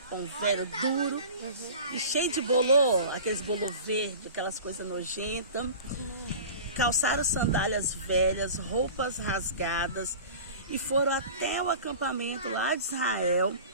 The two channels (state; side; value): inverted; both; correlation -0.38